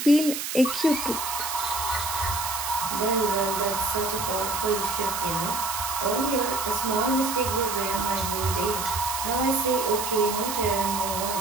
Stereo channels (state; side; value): noise; right; hiss, 4 dB below the sound